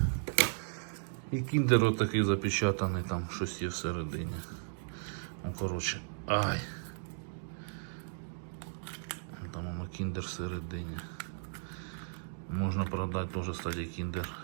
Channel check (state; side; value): silent; left; digital silence